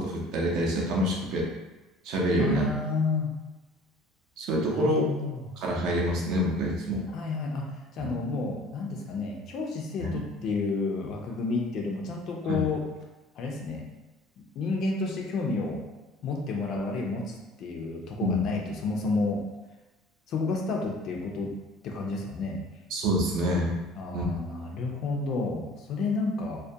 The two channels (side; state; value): both; normal; correlation 0.49